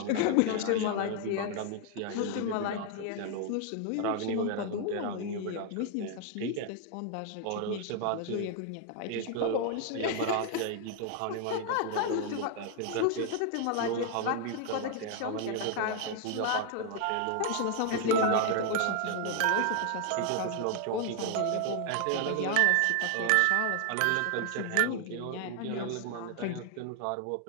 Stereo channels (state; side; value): different; both; correlation 0.00